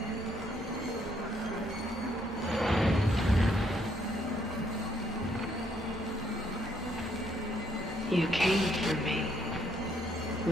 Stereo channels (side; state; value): both; normal; correlation 0.71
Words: You came for me.